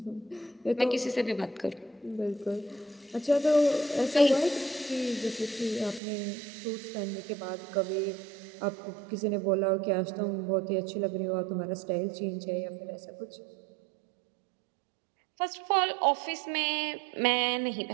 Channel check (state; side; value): drops out; left; at 6.0 s